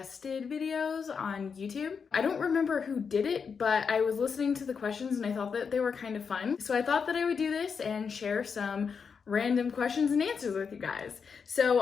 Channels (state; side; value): quieter; right; 6.0 dB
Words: videos on YouTube. I don't remember who did it, but I was listening to the questions and I thought that they were kind of fun. So I thought that I would do this and share some random questions and answers with you guys.